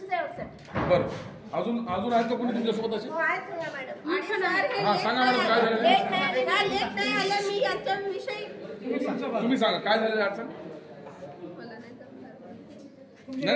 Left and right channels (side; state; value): both; identical; correlation 1.00